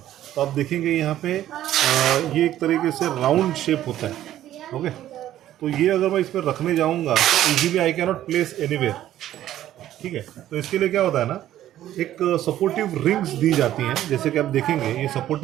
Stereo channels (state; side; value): quieter; left; 12.7 dB